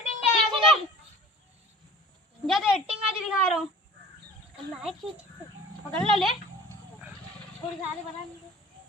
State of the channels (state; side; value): normal; both; correlation 0.45